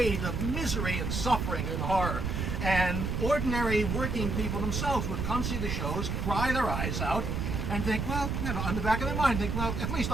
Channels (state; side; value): noise; right; rumble, 1 dB below the sound